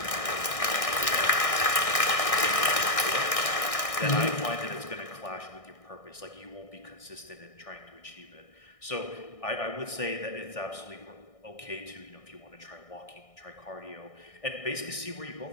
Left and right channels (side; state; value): right; late; 1.6 ms